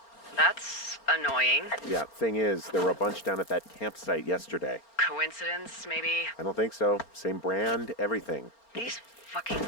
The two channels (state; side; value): late; right; 4.3 ms